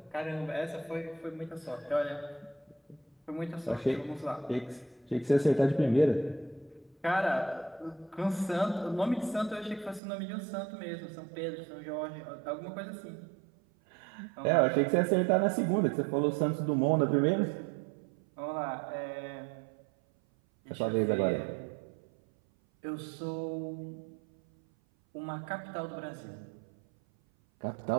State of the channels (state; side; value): drops out; left; at 10.0 s